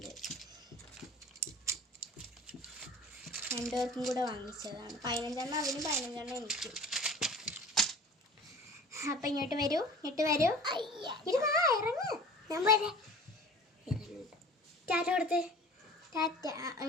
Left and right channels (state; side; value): normal; both; correlation 0.43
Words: 2 പേർക്കും കൂടെ വാങ്ങിച്ചതാണ്. 15 എണ്ണം അവനും 15 എണ്ണം എനിക്കും. അപ്പം ഇങ്ങോട്ട് വരൂ, ഇങ്ങോട്ട് വരൂ. ഇത് വാ, ഇറങ്ങ്. ഞാൻ വരാം. ടാറ്റ കൊടുത്ത്. ടാറ്റ.